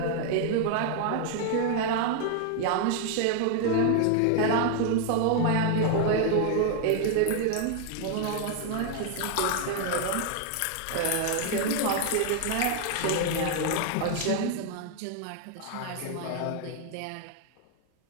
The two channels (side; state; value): both; different; correlation 0.00